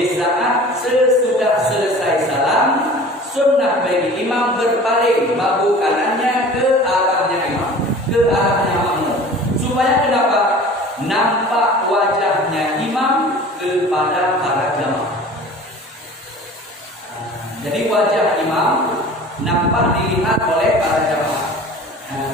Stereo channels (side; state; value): both; normal; correlation 0.42